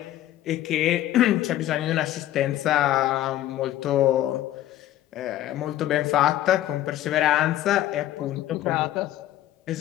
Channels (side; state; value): right; quieter; 13.4 dB